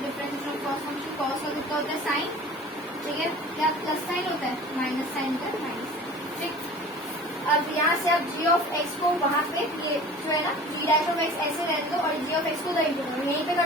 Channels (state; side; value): normal; both; correlation 0.41